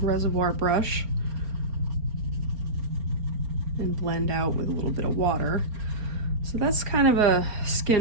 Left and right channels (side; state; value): left; late; 4.4 ms